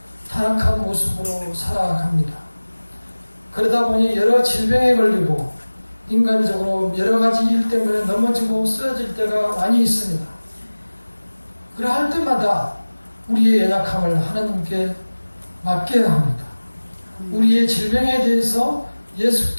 타락한 모습으로 살아갑니다. 그러다 보니 여러 질병에 걸리고 인간적으로 여러 가지 일 때문에 넘어지고 쓰러질 때가 많이 있습니다. 그러할 때마다 우리의 연약함을 하나님께 맡겨야 합니다. 우리의 질병에 대해서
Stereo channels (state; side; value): inverted; both; correlation -1.00